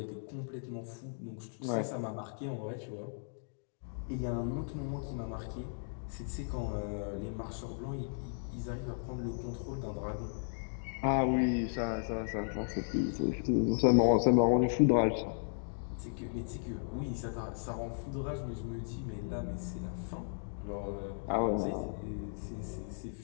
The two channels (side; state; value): right; silent; digital silence